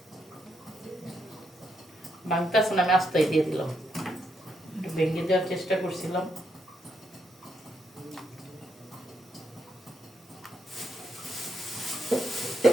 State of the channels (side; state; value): both; normal; correlation 0.78